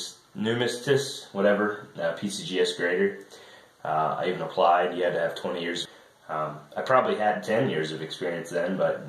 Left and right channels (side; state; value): both; identical; correlation 1.00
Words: whatever, PCGS grader. I even applied. You had to have 20 years. I probably had 10 years of experience then, but